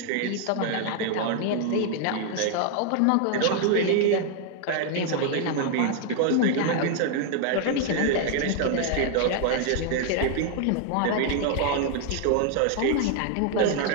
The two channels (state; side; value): different; both; correlation 0.00